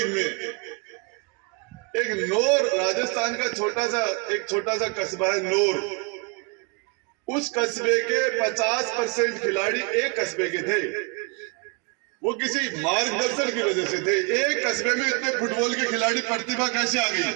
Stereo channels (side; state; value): left; quieter; 31.5 dB